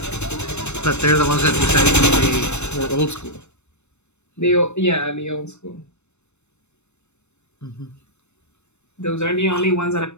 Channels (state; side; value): late; right; 0.82 ms